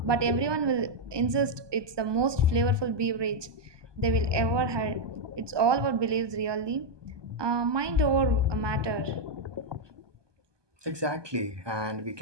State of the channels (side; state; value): left; late; 1.2 ms